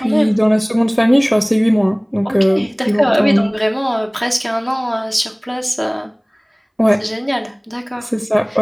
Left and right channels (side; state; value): both; identical; correlation 1.00